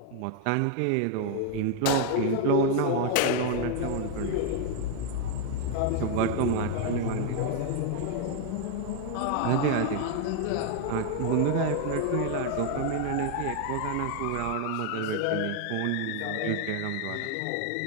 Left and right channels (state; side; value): different; both; correlation 0.00